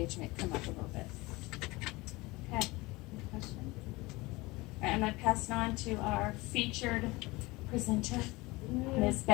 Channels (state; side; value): quieter; right; 22.3 dB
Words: come up a little bit. Okay. Any questions? All right, I'm going to pass it on to our featured presenter, Miss